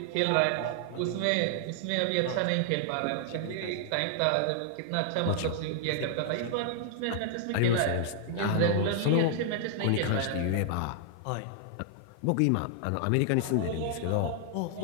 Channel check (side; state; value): both; different; correlation -0.01